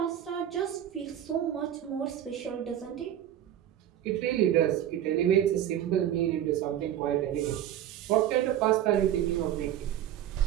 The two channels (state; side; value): quieter; left; 11.1 dB